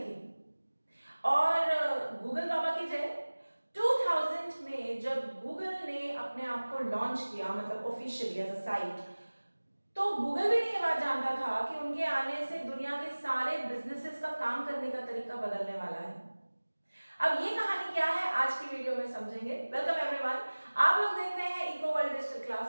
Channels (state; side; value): inverted; both; correlation -1.00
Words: और गूगल बाबा की जय, 2000 में जब गूगल ने अपने आप को लॉन्च किया, मतलब ऑफिशियली एज अ साइट, तो गूगल भी नहीं ये बात जानता था कि उनके आने से दुनिया के सारे बिजनेसेस का काम करने का तरीका बदलने वाला है। अब ये कहानी क्या है आज की वीडियो में समझेंगे। वेलकम एवरीवन, आप लोग देख रहे हैं इको वर्ल्ड डिजिटल